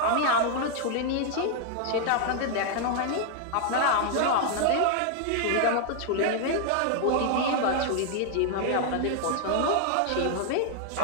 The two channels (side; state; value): both; different; correlation 0.00